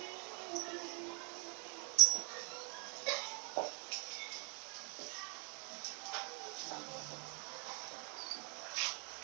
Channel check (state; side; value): quieter; left; 39.2 dB